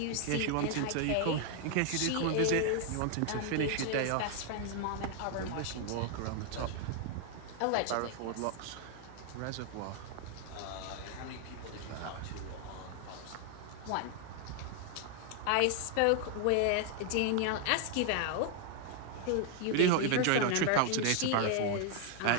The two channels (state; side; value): different; both; correlation 0.00